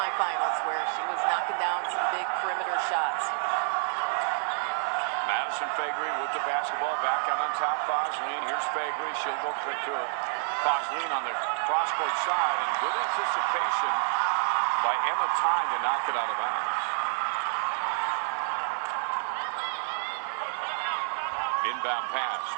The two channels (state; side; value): silent; left; 59 dB below the other